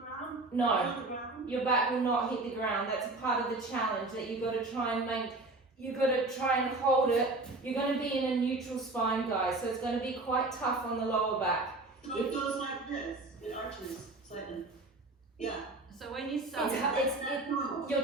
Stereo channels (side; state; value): left; quieter; 3.1 dB